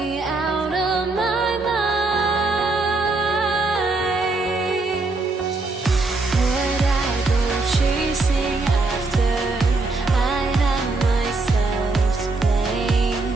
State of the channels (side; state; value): left; quieter; 3.4 dB